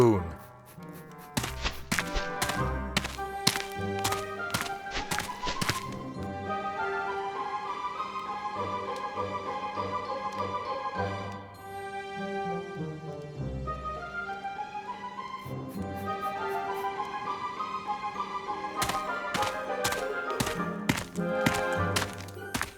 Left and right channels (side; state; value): both; identical; correlation 1.00